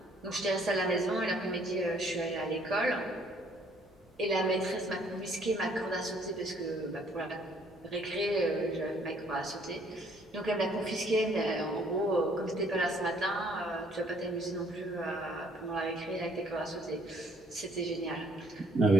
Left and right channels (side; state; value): both; normal; correlation 0.63